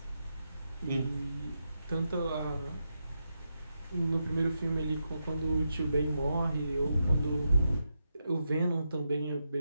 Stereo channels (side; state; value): both; inverted; correlation -0.85